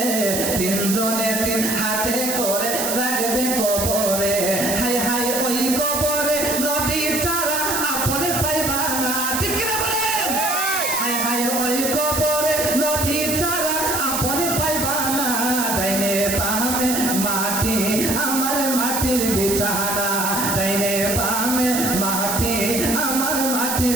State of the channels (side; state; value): right; noise; hiss, 2 dB below the sound